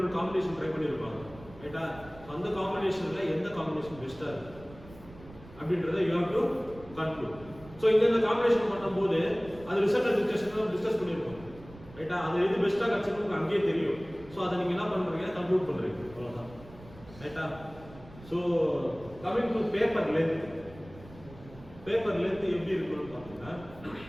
காம்பினேஷன் ட்ரை பண்ணியிருப்பாங்க. ரைட்டா? அந்த காம்பினேஷன்ல எந்த காம்பினேஷன் பெஸ்டா இருக்கு அப்படின்றத you have to conclude. So இந்த காம்பினேஷன் பண்ணும்போது அது ரிசல்ட் டிஸ்கஷன்ல டிஸ்கஸ் பண்ணிருக்கோம். ரைட்டா? அது எது பெஸ்டா கிடைச்சிருக்கு அங்கேயே தெரியும். ஸோ அதை நீங்க என்ன பண்றீங்க? கன்க்ளூட் பண்றீங்க. அவ்வளவுதான். ரைட்டா? So coming to paper length. Paper length எப்படி இருக்குன்னு பார்த்தீங்கன்னா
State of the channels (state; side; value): noise; right; rumble, 19 dB below the sound